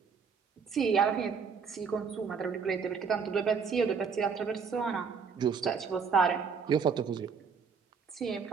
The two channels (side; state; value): left; quieter; 5.8 dB